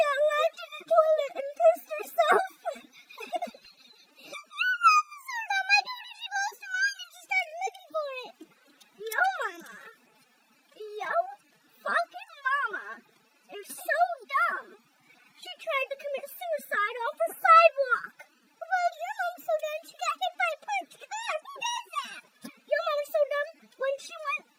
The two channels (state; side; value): identical; both; correlation 1.00